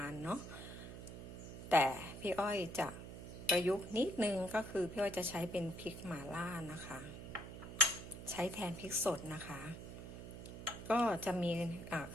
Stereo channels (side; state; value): right; noise; hum, 10 dB below the sound